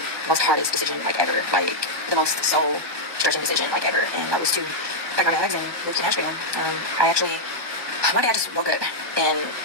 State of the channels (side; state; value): left; late; 1.2 ms